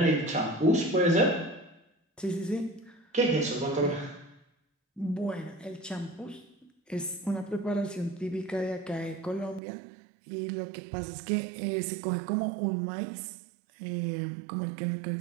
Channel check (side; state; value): left; drops out; at 9.6 s